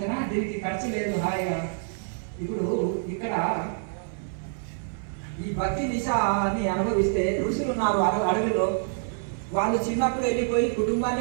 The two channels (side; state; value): left; silent; 56 dB below the other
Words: దీనికి ఖర్చు లేదు, హాయిగా. ఇప్పుడు ఇక్కడ ఈ భక్తి నిశాని అనుభవిస్తే ఋషులు ఉన్నారు అడవిలో, వాళ్ళు చిన్నప్పుడు వెళ్ళిపోయి